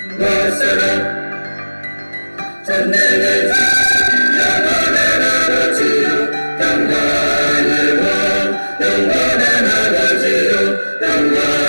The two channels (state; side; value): inverted; both; correlation -1.00